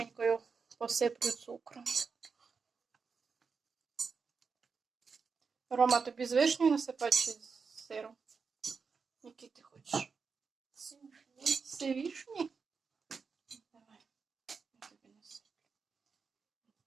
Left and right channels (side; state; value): left; quieter; 5.3 dB